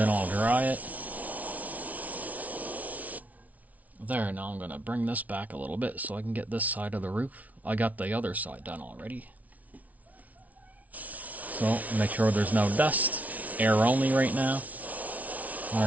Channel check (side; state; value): left; late; 0.072 ms